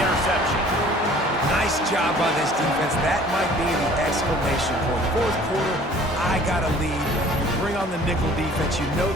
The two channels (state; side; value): normal; both; correlation 0.51